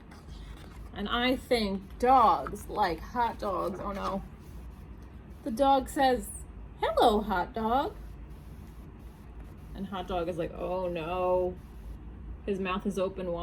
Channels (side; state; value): both; identical; correlation 1.00